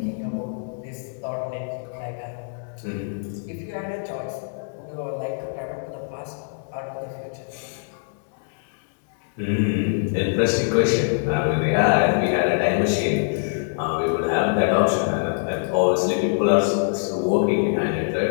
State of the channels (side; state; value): right; silent; digital silence